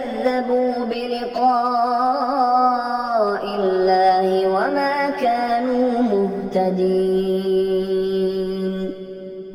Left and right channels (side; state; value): both; identical; correlation 1.00